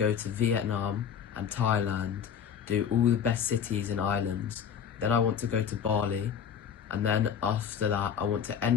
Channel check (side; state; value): right; quieter; 7.9 dB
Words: to Vietnam and Thailand, do all the best cities and islands. Then I want to go to Bali, and then after that, I want to